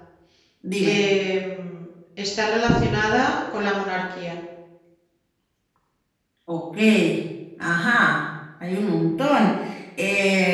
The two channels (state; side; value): identical; both; correlation 1.00